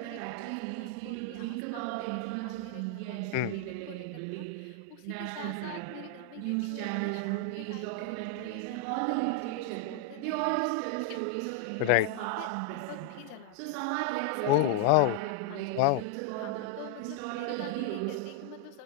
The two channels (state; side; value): different; both; correlation 0.00